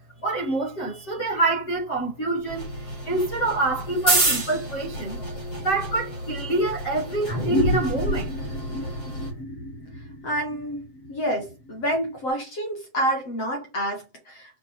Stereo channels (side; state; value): right; late; 7.7 ms